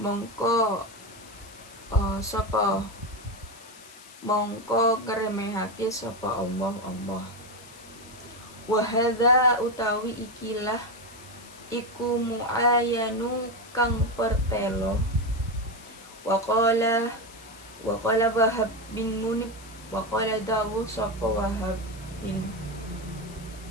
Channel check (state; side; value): noise; left; hiss, 20 dB below the sound